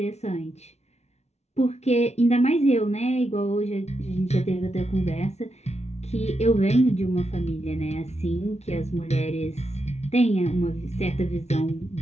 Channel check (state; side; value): late; right; 0.31 ms